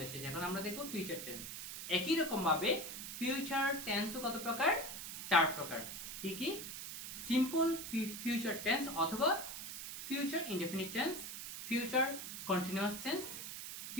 শেষ এখন আমরা দেখব ফিউচার টেন্স একই রকম ভাবে ফিউচার টেন্সও কত প্রকার 4 প্রকার কি কি সিম্পল ফিউচার টেন্স অথবা future indefinite tense future continuous tense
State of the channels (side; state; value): right; noise; hiss, 7 dB below the sound